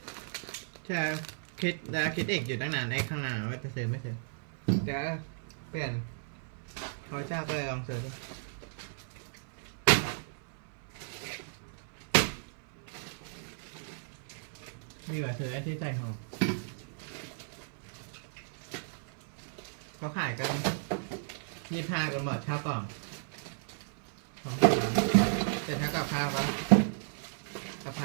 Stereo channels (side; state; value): left; silent; 55 dB below the other